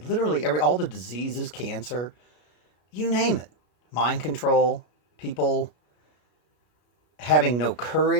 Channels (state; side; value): late; right; 33 ms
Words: all the diseases, cancer, you name it. Mind control, people having no